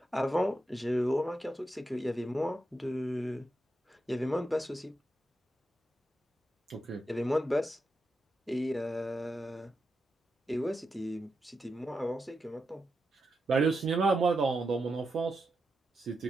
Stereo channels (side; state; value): both; normal; correlation 0.87